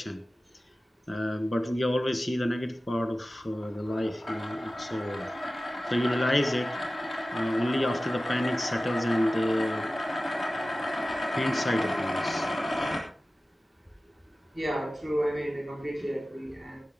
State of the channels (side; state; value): both; normal; correlation 0.96